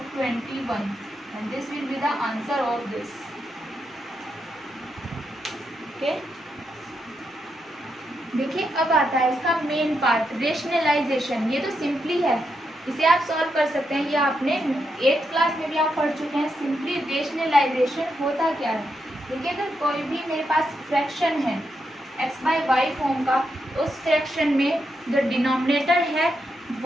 21 and this will be the answer of this. Okay, देखिए अब आता है इसका मेन पार्ट, रेशनलाइजेशन। ये तो सिंपली है, इसे आप सॉल्व कर सकते हैं। ये आपने 8th क्लास में भी आप पढ़ चुके हैं। सिंपली रेशनलाइजेशन होता क्या है, देखिए अगर कोई भी मेरे पास फ्रैक्शन है x/y फॉर्म का, उस फ्रैक्शन में जो डिनोमिनेटर है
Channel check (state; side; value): normal; both; correlation 0.83